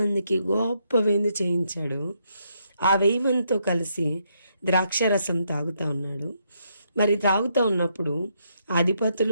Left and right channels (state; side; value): inverted; both; correlation -0.76